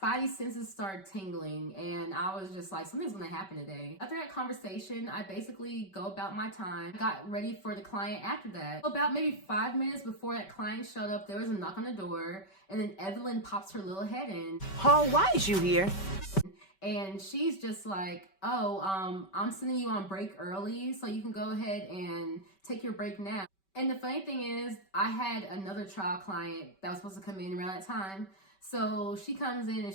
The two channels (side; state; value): right; late; 5.2 ms